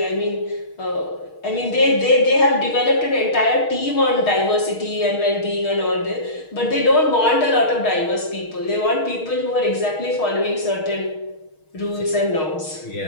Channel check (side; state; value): right; late; 6.4 ms